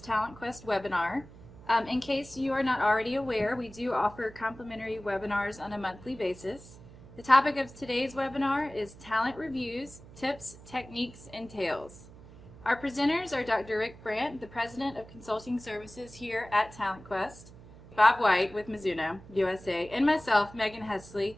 webinar. In case you are not already aware, we do offer complimentary webinars on a monthly basis. The topic of today's webinar is Talent Reviews, Tips, Techniques, and Tales. Our presenters are Dr. Rick Brandt, the President of Consulting Services here at TalentQuest, Bob White with Mizuno, USA, and myself, Megan Hesley.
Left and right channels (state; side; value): noise; right; hum, 19 dB below the sound